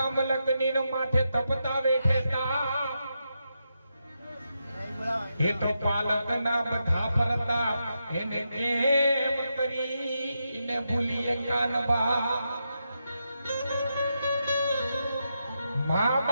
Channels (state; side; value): inverted; both; correlation -0.85